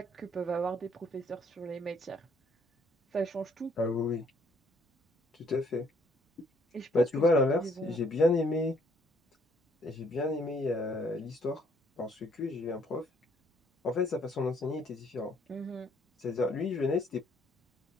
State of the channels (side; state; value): both; normal; correlation 0.65